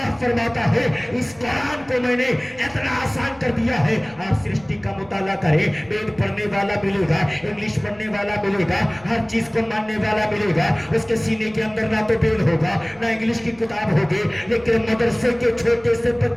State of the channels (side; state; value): left; noise; rumble, 27 dB below the sound